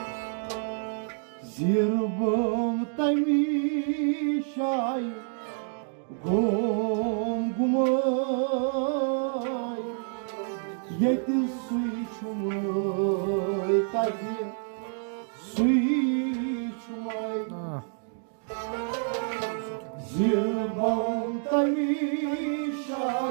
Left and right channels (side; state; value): left; silent; 59 dB below the other